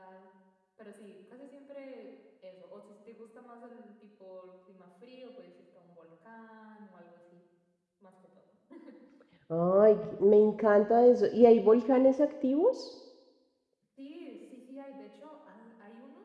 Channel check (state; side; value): identical; both; correlation 1.00